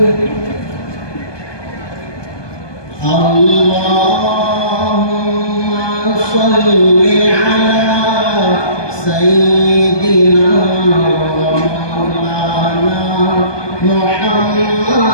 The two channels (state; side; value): late; right; 1.2 ms